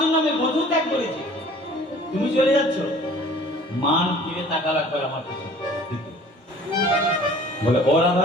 আমি বন্ধু ত্যাগ করেছি, তুমি চলে যাচ্ছ। মান ফিরে তাকাল একবার আমার কাছে, বলে ও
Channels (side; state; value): both; normal; correlation 0.49